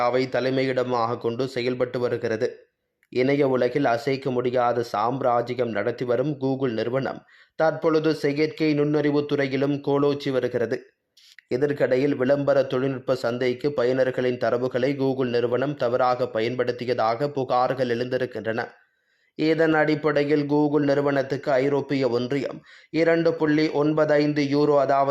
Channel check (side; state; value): both; identical; correlation 1.00